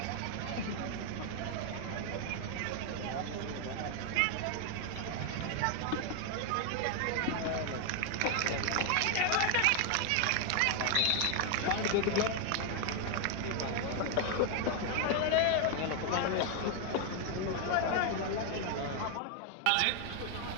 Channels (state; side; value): different; both; correlation 0.00